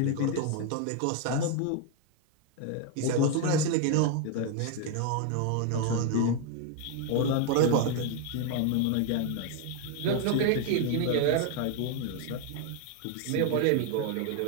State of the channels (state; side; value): different; both; correlation 0.00